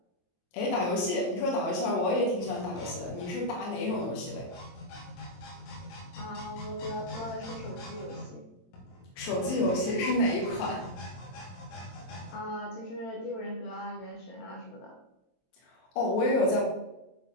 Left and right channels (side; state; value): right; late; 22 ms